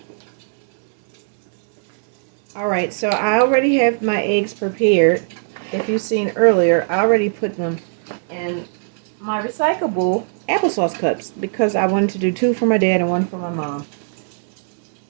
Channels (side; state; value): left; silent; digital silence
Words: Alright, so I already have my eggs prepared. If you've seen earlier, I already put them in my recyclable applesauce cups because I wanted to do 2 for my dad and 1 for my mom.